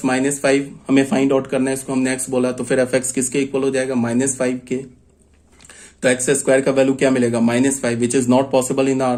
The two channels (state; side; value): identical; both; correlation 1.00